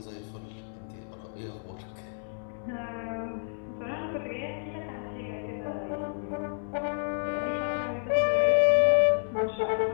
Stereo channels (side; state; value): right; silent; 58 dB below the other